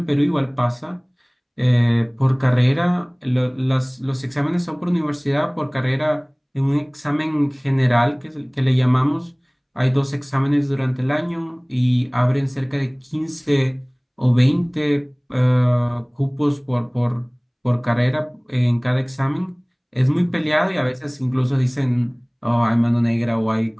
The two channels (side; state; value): both; identical; correlation 1.00